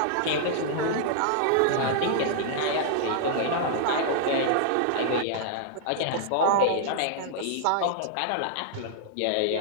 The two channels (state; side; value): different; both; correlation -0.01